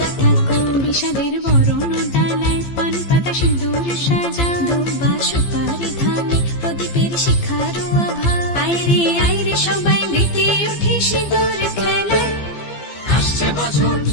ঠাকুর। বিষাদের বরণ ডালায় পান পাতা সিঁদুর সাজা, দৌপা সুপারি ধানে প্রদীপের শিখারো আভা। আইরে সবাই মেতে উঠে সিঁদুর খেলায়। আসছে বছর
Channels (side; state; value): right; late; 15 ms